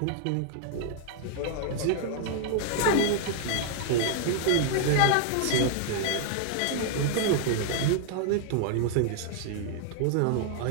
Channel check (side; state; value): both; different; correlation -0.01